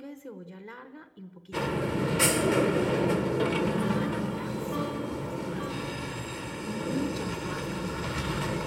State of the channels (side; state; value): both; identical; correlation 1.00